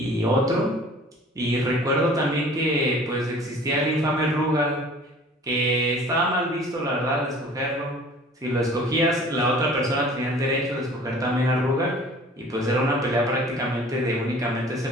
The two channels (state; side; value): normal; both; correlation 0.48